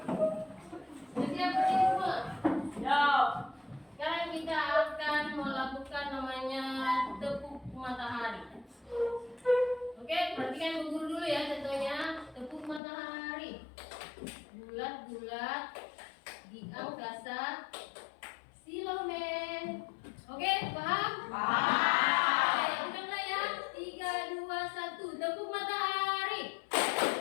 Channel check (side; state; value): right; drops out; at 12.8 s